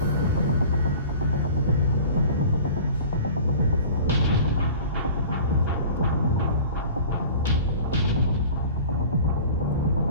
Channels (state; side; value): inverted; both; correlation -0.42